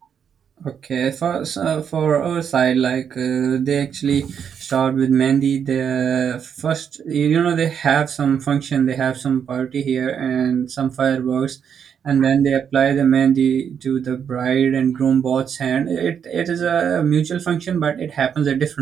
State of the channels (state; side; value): quieter; left; 7.8 dB